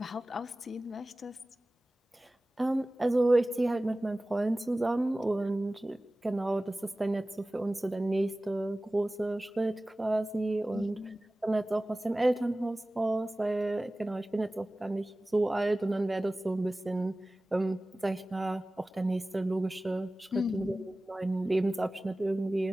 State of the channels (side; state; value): both; normal; correlation 0.97